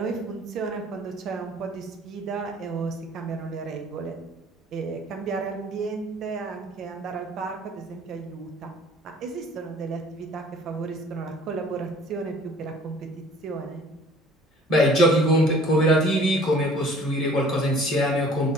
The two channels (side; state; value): both; normal; correlation 0.52